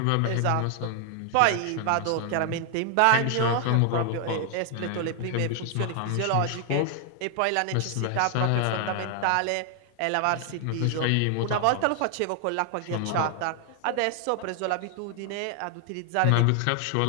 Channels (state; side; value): different; both; correlation 0.00